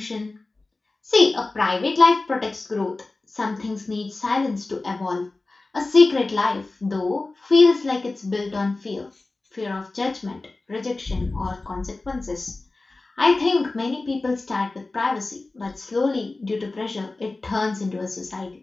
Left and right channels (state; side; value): quieter; right; 3.3 dB